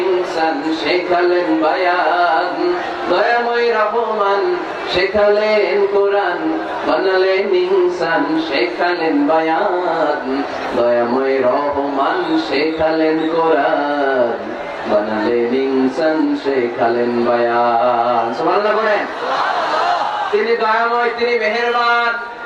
শেখালেন বায়ান। দয়াময় রহমান, শেখালেন কোরআন, বানালেন ইনসান, শেখালেন বায়ান। দয়াময় রহমান, শেখালেন কোরআন, বানালেন ইনসান, শেখালেন বায়ান। সুবহানাল্লাহ বলেন। তিনি দয়াময়, তিনি মেহেরবান।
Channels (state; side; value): identical; both; correlation 1.00